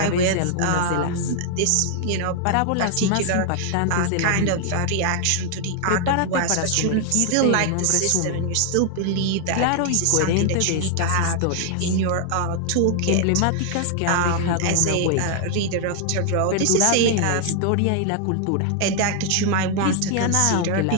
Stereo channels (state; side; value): different; both; correlation 0.00